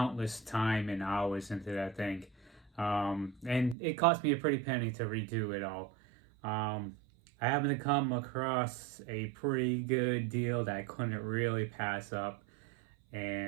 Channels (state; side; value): drops out; left; at 3.8 s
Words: time and hours into that thing, and it cost me a pretty penny to redo it all. I happened to come across a pretty good deal that I couldn't really pass up.